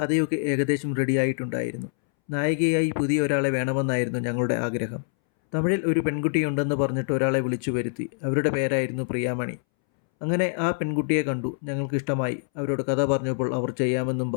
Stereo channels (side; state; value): right; silent; 62 dB below the other